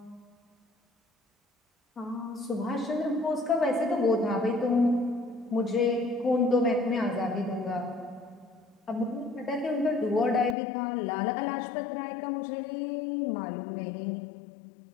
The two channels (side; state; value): right; drops out; at 10.6 s